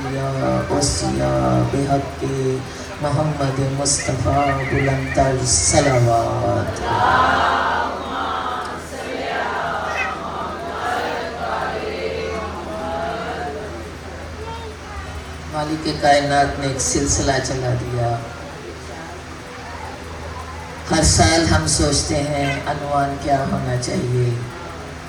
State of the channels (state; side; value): identical; both; correlation 1.00